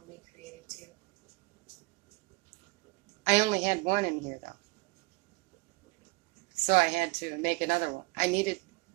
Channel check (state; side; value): quieter; left; 24.5 dB